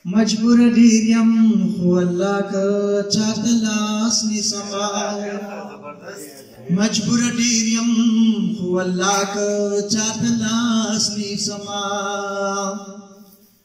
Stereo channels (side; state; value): both; identical; correlation 1.00